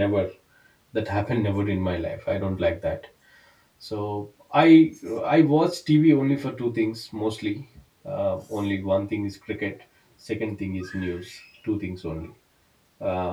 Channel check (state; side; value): identical; both; correlation 1.00